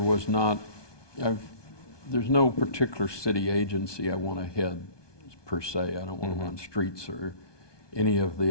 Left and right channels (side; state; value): right; late; 1.2 ms